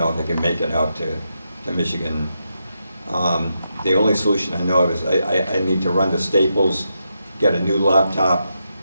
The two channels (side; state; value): both; inverted; correlation -0.84